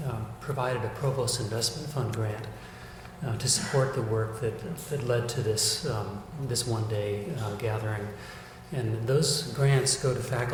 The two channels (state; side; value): identical; both; correlation 1.00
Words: provided a Provost Investment Fund grant to support the work that led to this one-day gathering. And those grants go to